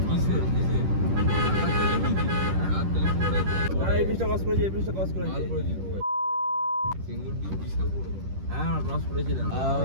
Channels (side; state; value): left; late; 10 ms